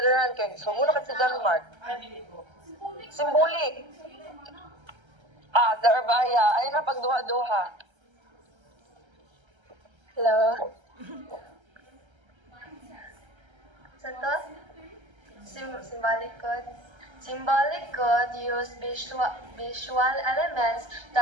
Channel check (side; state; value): left; late; 1.3 ms